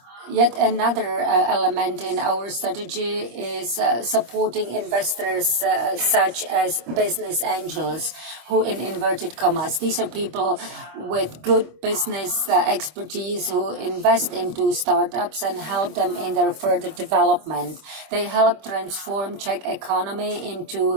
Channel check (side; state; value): left; late; 25 ms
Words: Yet another element in our strategy is supporting investors such as business angels, who in inverted commas, these are people with good business expertise who invest into startups and help them in their further development. They help transform Czech economy